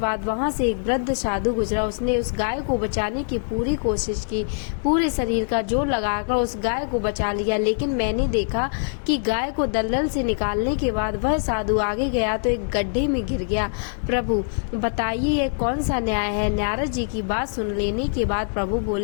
वहां से एक वृद्ध साधु गुजरा। उसने उस गाय को बचाने की पूरी कोशिश की। पूरे शरीर का जोर लगाकर उस गाय को बचा लिया, लेकिन मैंने देखा कि गाय को दलदल से निकालने के बाद वह साधु आगे गया तो एक गड्ढे में गिर गया। प्रभु, बताइए यह कौन सा न्याय है। नारद जी की बात सुन लेने के बाद प्रभु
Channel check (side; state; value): right; silent; digital silence